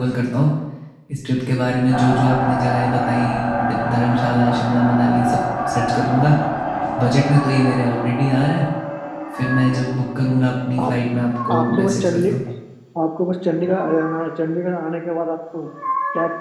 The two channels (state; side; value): identical; both; correlation 1.00